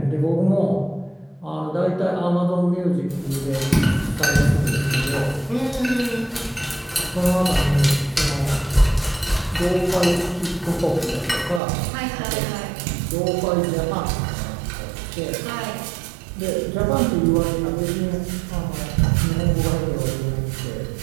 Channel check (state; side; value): drops out; left; at 11.6 s